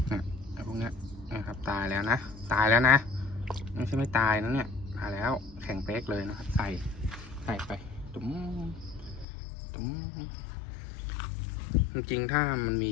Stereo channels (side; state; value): right; drops out; at 9.2 s